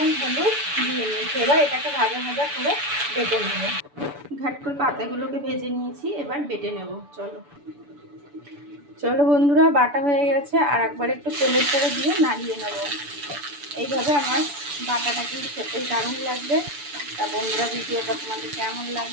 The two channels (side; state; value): left; late; 6.9 ms